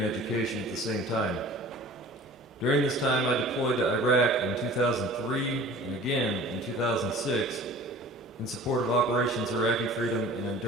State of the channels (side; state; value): both; normal; correlation 0.44